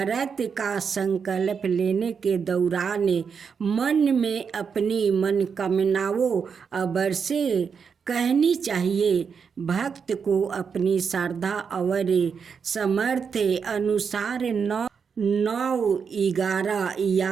का संकल्प लेने के दौरान मन में अपनी मनोकामनाओं अवश्य कहनी चाहिए। भक्त को अपनी श्रद्धा और सामर्थ्य अनुसार 9, 11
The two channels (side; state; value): left; quieter; 6.3 dB